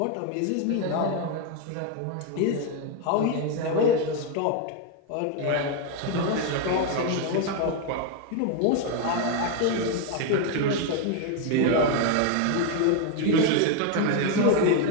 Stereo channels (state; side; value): different; both; correlation 0.01